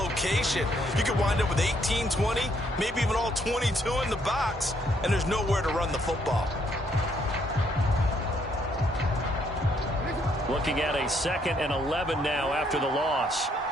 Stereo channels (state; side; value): normal; both; correlation 0.70